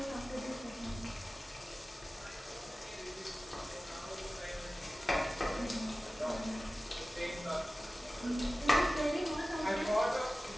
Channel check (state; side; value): normal; both; correlation 0.96